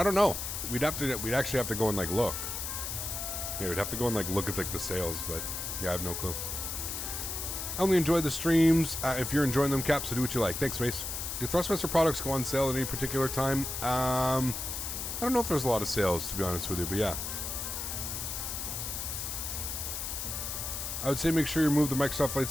don't know. We'd actually have to go and like look. Yeah, we'd have to go and like look at like the sales, but yeah, I have no clue. I only enjoy the streams. If you're enjoying them, Cap, so do what you like. Thanks, Mace. Do Thrustmaster products go on sale at any particular time? I don't know if there's a lot of sales, to be honest with you, but yeah. I would say make sure you remove the Microsoft Flight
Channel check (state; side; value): noise; left; hiss, 4 dB below the sound